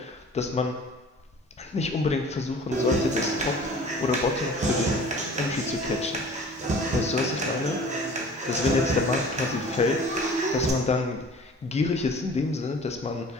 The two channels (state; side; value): normal; both; correlation 0.46